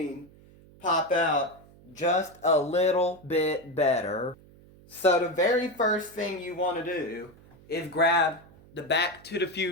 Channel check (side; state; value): right; noise; hum, 24 dB below the sound